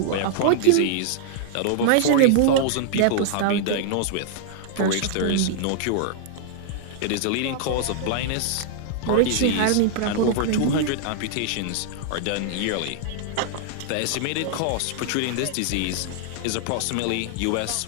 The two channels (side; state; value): both; different; correlation -0.01